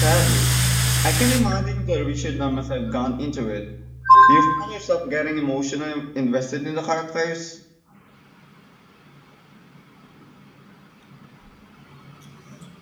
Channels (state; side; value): identical; both; correlation 1.00